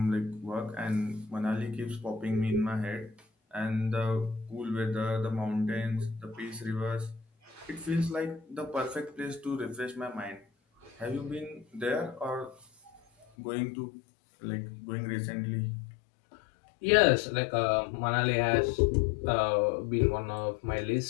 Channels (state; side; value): drops out; right; at 13.2 s